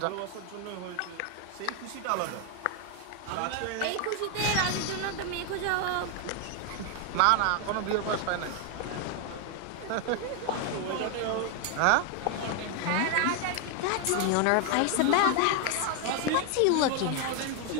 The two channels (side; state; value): both; different; correlation 0.01